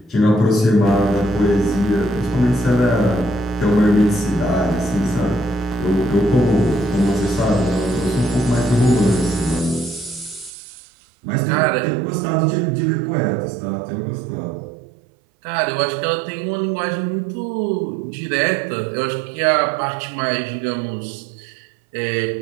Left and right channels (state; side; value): drops out; left; at 10.5 s